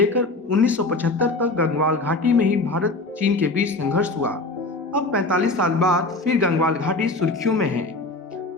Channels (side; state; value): right; quieter; 3.1 dB